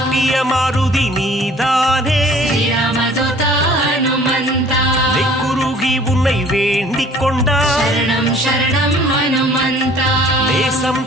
மாருதி நீதானே, ஸ்ரீராமதூதா ஹனுமந்தா. நெக்குருகி உன்னை வேண்டிக் கொண்டார், சரணம் சரணம் ஹனுமந்தா. நேசம்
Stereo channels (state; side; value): normal; both; correlation 0.52